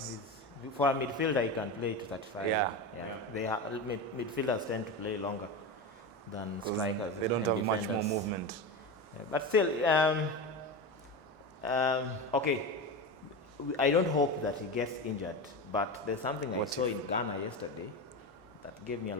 For a midfielder, he can play to 35. Yeah. Midfielders tend to play longer than strikers. They don't and have defenders. much more movement. Yeah, but still, okay. I don't hope that he gets injured, but there's something I saw in Ghana yesterday that gave me a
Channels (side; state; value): left; late; 2.2 ms